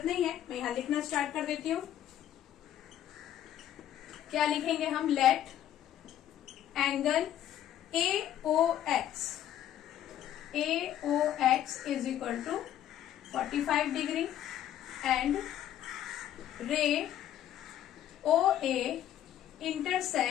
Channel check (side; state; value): right; quieter; 11.4 dB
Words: नहीं है। मैं यहां लिखना स्टार्ट कर देती हूँ। क्या लिखेंगे हम? Let angle AOX is equal to 45 degree and ray OA